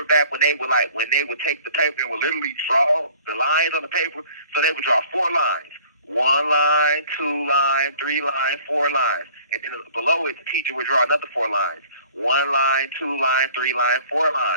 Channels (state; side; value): inverted; both; correlation -0.52